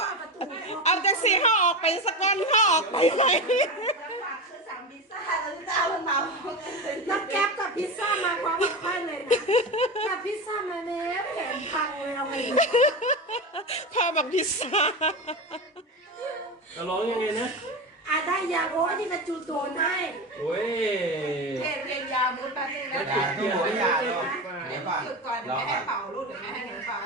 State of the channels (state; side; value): normal; both; correlation 0.22